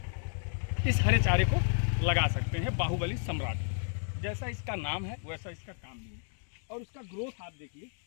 इस हरे चारे को लगा सकते हैं। बाहुबली सम्राट जैसा इसका नाम है वैसा इसका काम भी है। और उसका ग्रोथ आप देखिए,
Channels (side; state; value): right; silent; digital silence